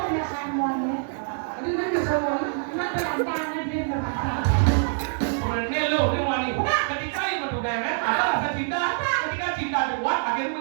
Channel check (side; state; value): left; silent; digital silence